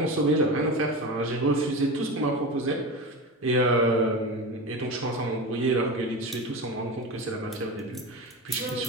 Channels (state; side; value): normal; both; correlation 0.25